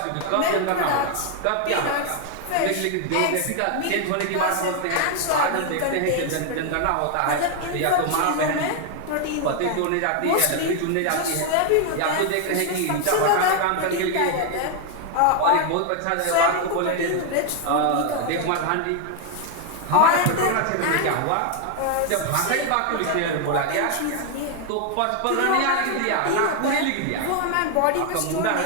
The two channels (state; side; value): different; both; correlation 0.01